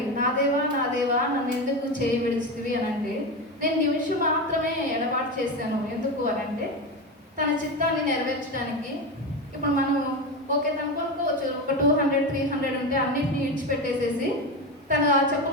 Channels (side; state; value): both; normal; correlation 0.19